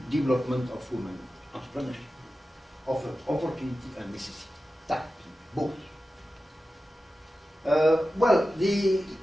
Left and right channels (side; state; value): both; normal; correlation 0.94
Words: development of women entrepreneurship, of opportunity and necessity. That, both. Well,